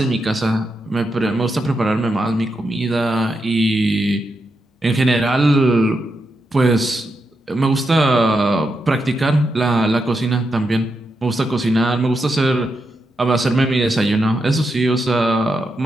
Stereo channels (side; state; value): both; normal; correlation 0.85